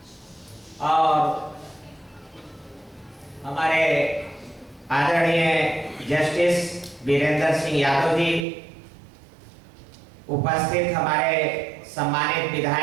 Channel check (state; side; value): drops out; left; at 8.5 s